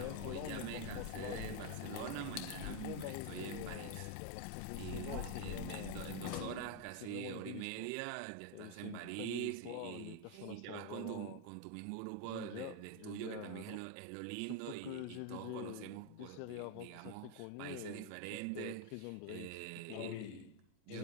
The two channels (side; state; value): both; different; correlation 0.01